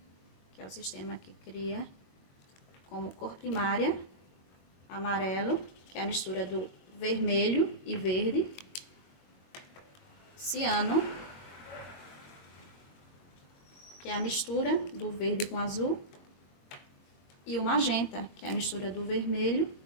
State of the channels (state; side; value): late; right; 22 ms